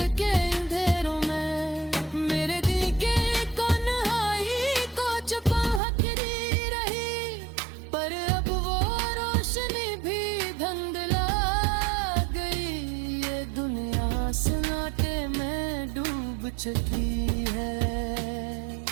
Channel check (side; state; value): left; drops out; at 5.8 s